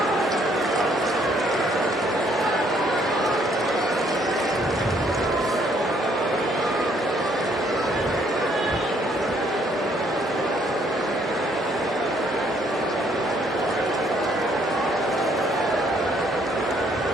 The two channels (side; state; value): both; normal; correlation 0.66